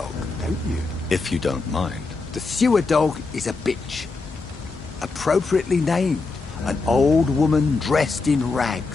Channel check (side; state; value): right; quieter; 3.9 dB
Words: don't you? If you don't mind. The sewer dog is a bitch. Appropriately named. An old woman dressed in